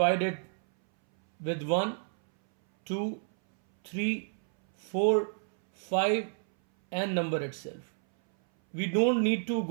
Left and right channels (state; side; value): silent; left; 58 dB below the other